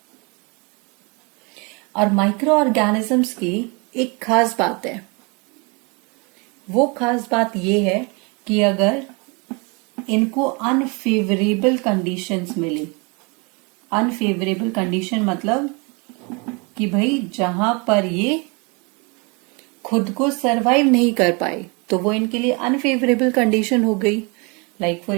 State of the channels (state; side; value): quieter; left; 30.6 dB